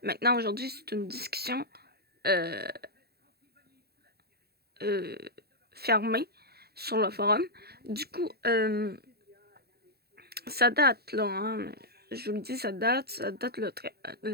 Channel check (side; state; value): left; late; 0.46 ms